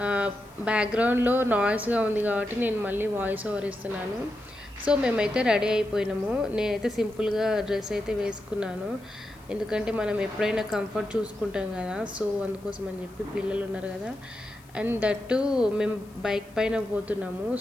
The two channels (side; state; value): left; noise; hiss, 28 dB below the sound